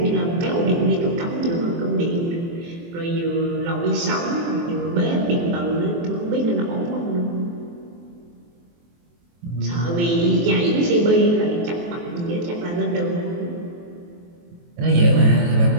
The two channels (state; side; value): late; left; 23 ms